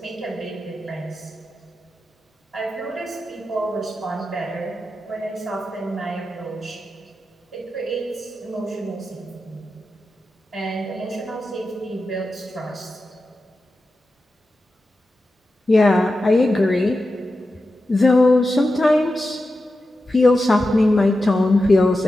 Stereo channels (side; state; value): both; normal; correlation 0.91